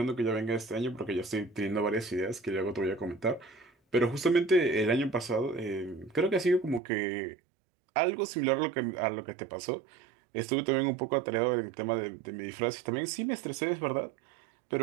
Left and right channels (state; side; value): drops out; left; at 6.8 s